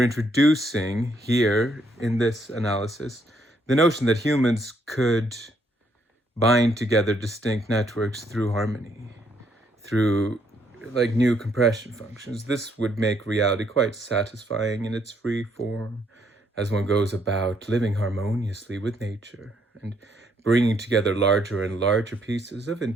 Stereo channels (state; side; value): normal; both; correlation 0.71